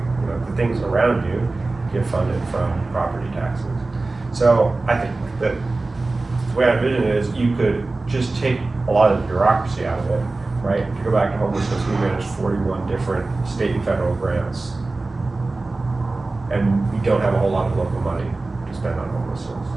things around you, get funded from property taxes. So I think that the way I envision it is you could just take a lot of the bureaucracy out of it, right? If you go back to homelessness, we manage 41 different state and federal grants. And we don't have a whole lot of local money to spend on homelessness.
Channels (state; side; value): quieter; left; 3.3 dB